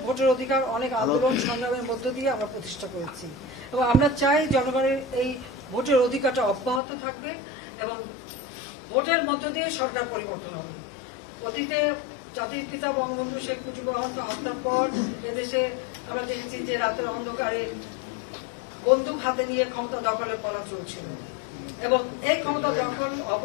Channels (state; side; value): drops out; right; at 6.8 s